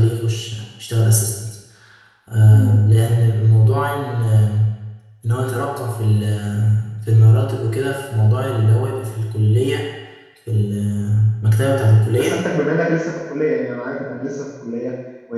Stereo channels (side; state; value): both; identical; correlation 1.00